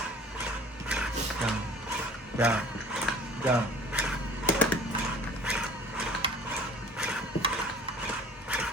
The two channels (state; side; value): normal; both; correlation 0.48